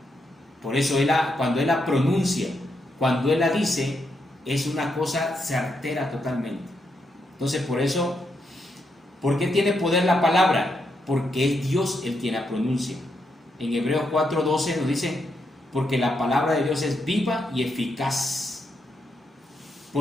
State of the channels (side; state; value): both; normal; correlation 0.81